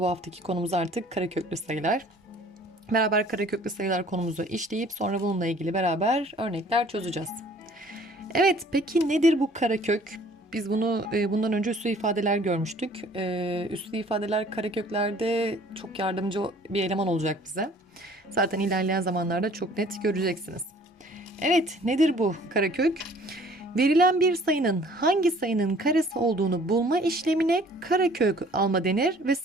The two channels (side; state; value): both; normal; correlation 0.54